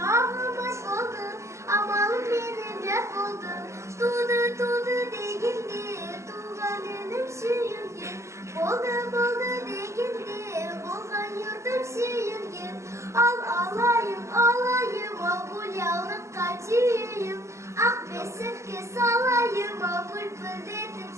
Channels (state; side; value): late; left; 0.14 ms